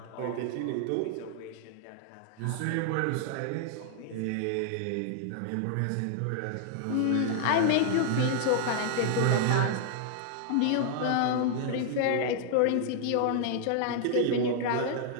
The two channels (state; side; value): different; both; correlation -0.01